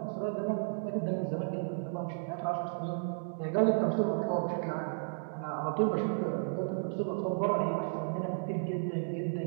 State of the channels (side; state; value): left; silent; digital silence